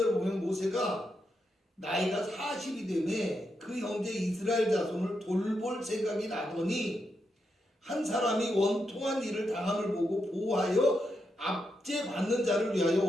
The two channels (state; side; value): normal; both; correlation 0.84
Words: 보면 모세가 나이가 40이 되매 그 형제 이스라엘 자손을 돌볼 생각이 나더니 한 사람이 원통한 일을 당함을 보고 보호하여 압제받는 자를 위하여